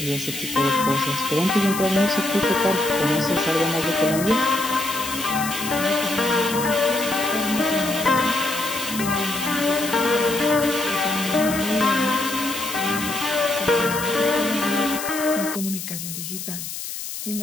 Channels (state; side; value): noise; left; hiss, 7 dB below the sound